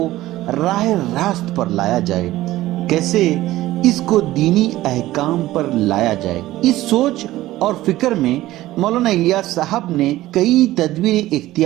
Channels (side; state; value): left; quieter; 16.1 dB